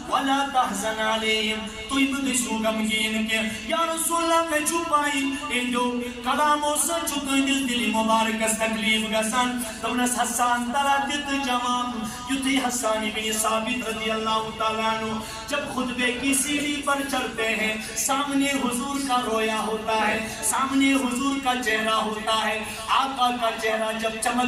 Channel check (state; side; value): identical; both; correlation 1.00